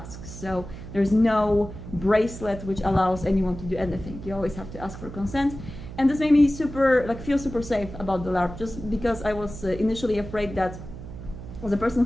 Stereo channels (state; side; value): noise; right; hum, 12 dB below the sound